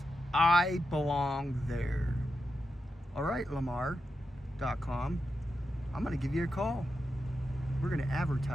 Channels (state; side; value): normal; both; correlation 0.88